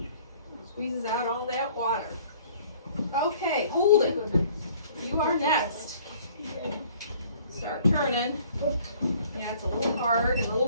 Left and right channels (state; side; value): inverted; both; correlation -0.55